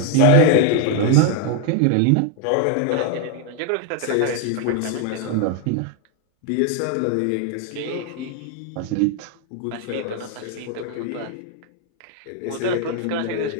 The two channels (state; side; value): different; both; correlation 0.00